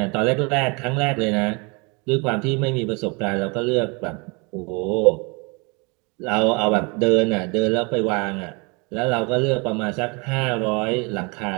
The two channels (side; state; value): left; quieter; 30.0 dB